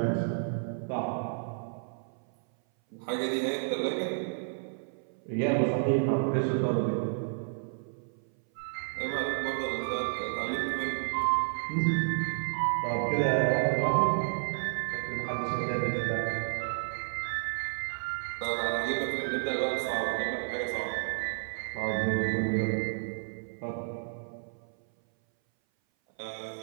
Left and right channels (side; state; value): left; silent; 57 dB below the other